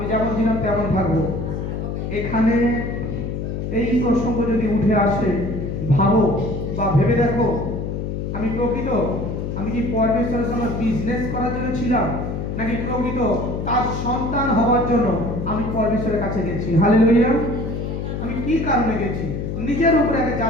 যেমন ছিলাম তেমন থাকবো। এখানে এই প্রসঙ্গ যদি উঠে আসে, ভাবো বা ভেবে দেখো, আমি কি পরমেশ্বরের সঙ্গে বিজনেস করার জন্য ছিলাম, নাকি প্রকৃত তার সন্তান হওয়ার জন্য আমি পরমেশ্বরের কাছে গেছি? হালেলুয়া। আমি কি কারণে গেছি? নিজের উপরে আগে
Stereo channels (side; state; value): left; noise; hum, 4 dB below the sound